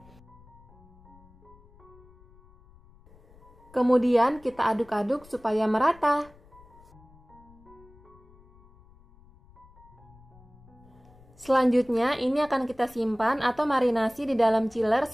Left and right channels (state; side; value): noise; left; rumble, 25 dB below the sound